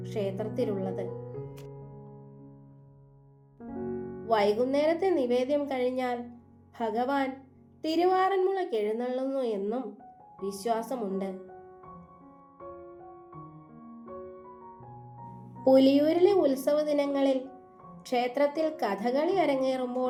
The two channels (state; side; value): identical; both; correlation 1.00